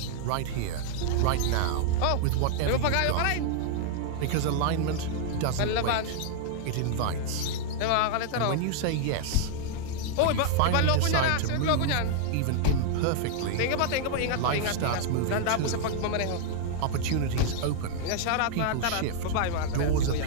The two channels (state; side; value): different; both; correlation 0.00